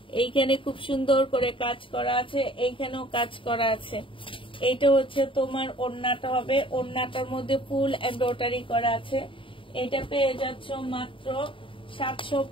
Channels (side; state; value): right; late; 0.25 ms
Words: এইখানে খুব সুন্দর করে কাজ করা আছে, এইখানেও কাজ করা আছে। এইটা হচ্ছে তোমার ওড়নাটা হবে। ওড়নাটার মধ্যে ফুল এমব্রয়ডারি করা আছে। এটা পেয়ে যাচ্ছ মাত্র